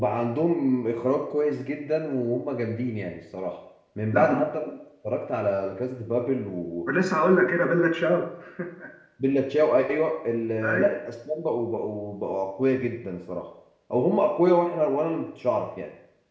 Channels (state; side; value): identical; both; correlation 1.00